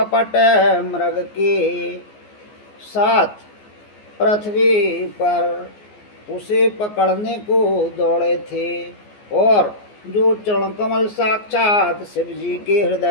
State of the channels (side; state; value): right; late; 14 ms